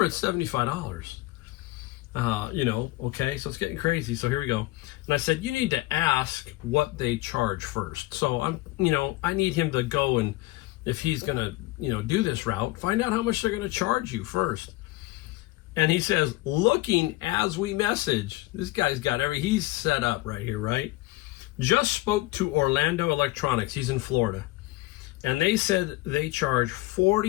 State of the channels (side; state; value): right; quieter; 19.1 dB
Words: it's $75. Okay, so it's getting crazy. So here we go. And I said, you need to ask what they charge first. So I need him to go, and if he's going to, do this route, find out how much they're going to charge you first. And he says, looking as we message, this guy's got he's set up right here, right? Just spoke to Orlando Electronics. He's in Florida. And they said they charge